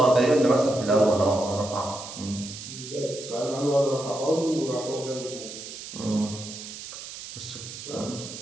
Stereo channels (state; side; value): noise; right; hiss, 11 dB below the sound